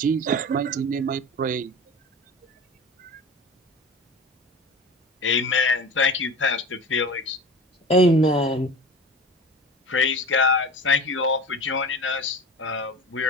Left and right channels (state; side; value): normal; both; correlation 0.34